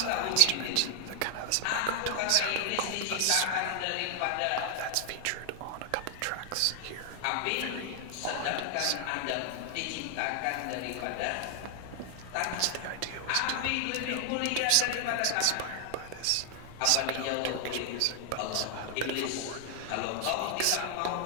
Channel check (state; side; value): different; both; correlation 0.00